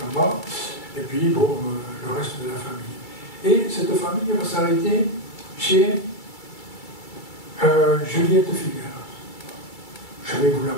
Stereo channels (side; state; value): right; late; 2.3 ms